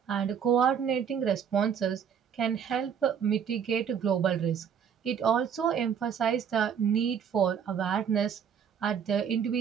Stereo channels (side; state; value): left; quieter; 7.7 dB